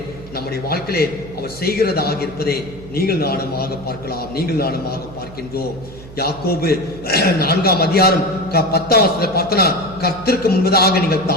நம்முடைய வாழ்க்கையிலே அவர் செய்கிறதாக இருப்பதை நீங்கள் நானுமாக பார்க்கலாம், நீங்கள் நானுமாக பார்க்கின்றோம். யாக்கோபு 4ஆம் அதிகாரம் 10ஆம் வசனத்தை பார்த்தனா, கர்த்தருக்கு முன்பதாக நீங்கள்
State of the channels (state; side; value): noise; right; hum, 17 dB below the sound